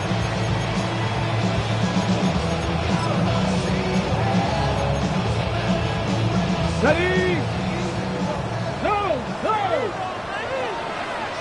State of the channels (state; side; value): identical; both; correlation 1.00